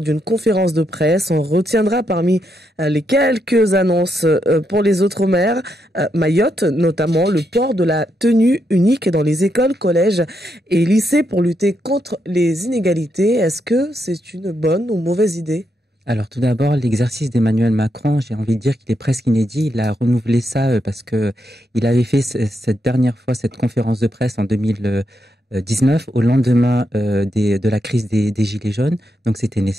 d'une conférence de presse. On retiendra parmi les quelques annonces pour les Outre-mer, Mayotte, notamment le port de la tenue unique dans les écoles, collèges et lycées pour lutter contre les inégalités. Est-ce que c'est une bonne ou mauvaise idée ? Alors tout d'abord, l'exercice d'Emmanuel Macron, j'ai envie de dire qu'il est presque inédit. Il a renouvelé ça parce que il avait fait cette dernière fois cette conférence de presse en 2019 au lendemain de la crise des Gilets jaunes. Donc c'était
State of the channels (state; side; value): normal; both; correlation 0.81